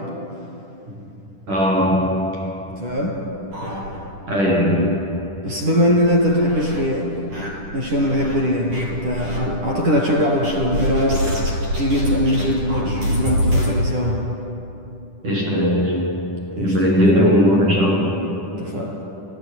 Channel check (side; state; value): left; late; 10 ms